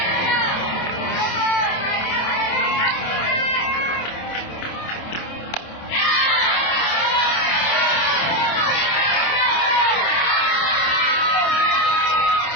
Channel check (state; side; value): late; right; 27 ms